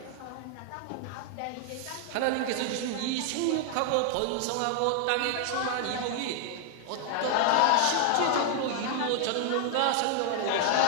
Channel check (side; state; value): both; different; correlation 0.00